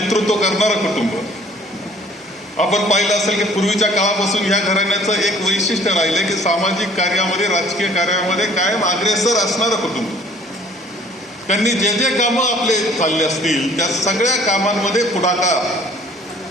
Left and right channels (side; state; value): both; normal; correlation 0.54